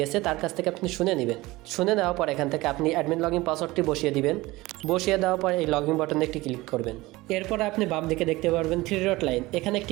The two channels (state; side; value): quieter; left; 20.0 dB